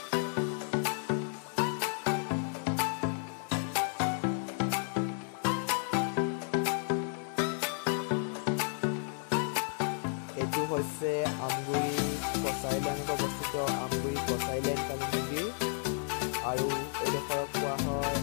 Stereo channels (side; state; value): right; silent; 56 dB below the other